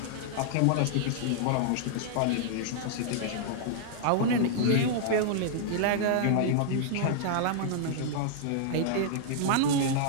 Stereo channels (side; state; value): both; different; correlation -0.01